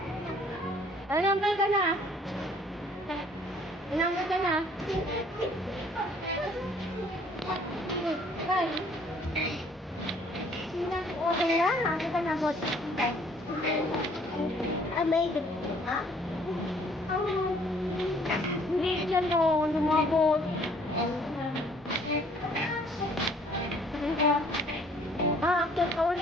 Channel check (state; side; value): normal; both; correlation 0.59